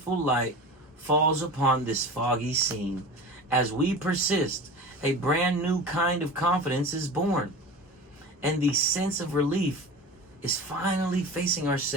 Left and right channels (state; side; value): normal; both; correlation 0.33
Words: light falls upon this foggy scene. As we persist, a brand new kind of confidence is born, and the sense of relief is finally facing